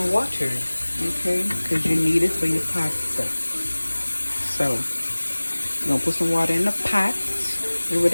water, okay? Because you need it for your pasta. So, you're gonna put some water in the pot or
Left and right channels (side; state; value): both; inverted; correlation -1.00